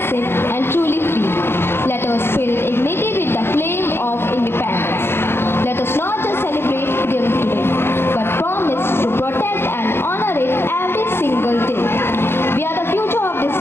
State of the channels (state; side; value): late; right; 0.11 ms